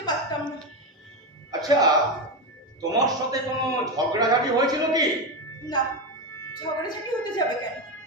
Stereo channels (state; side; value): normal; both; correlation 0.13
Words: পারতাম না। আচ্ছা, তোমার সাথে কোনো ঝগড়াঝাটি হয়েছিল কি? না, ঝগড়াঝাটি হতে যাবে কেন?